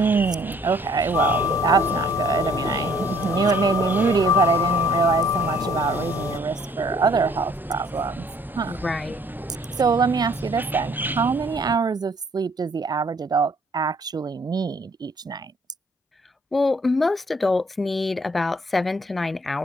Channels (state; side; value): normal; both; correlation 0.60